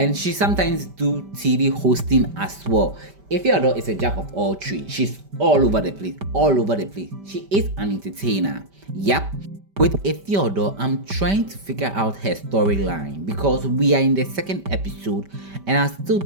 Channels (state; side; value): late; left; 5.1 ms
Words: she sometimes do TV hosting as well. Ifeodor is a jack of all trades. She's all over the place, all over the place. She is an entertainer. Yep. With Ifeodor, I'm trying to figure out her storyline because we are in the second episode and I still